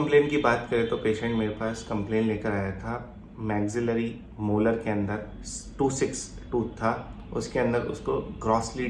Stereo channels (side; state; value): both; identical; correlation 1.00